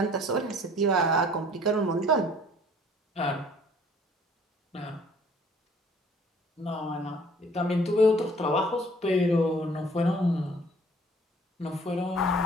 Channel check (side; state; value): both; normal; correlation 0.55